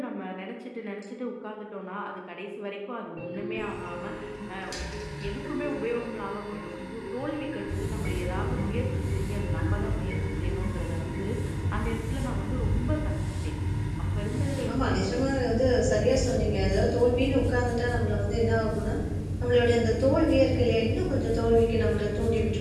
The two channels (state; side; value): identical; both; correlation 1.00